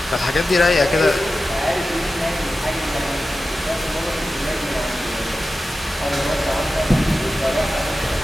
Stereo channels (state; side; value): normal; both; correlation 0.93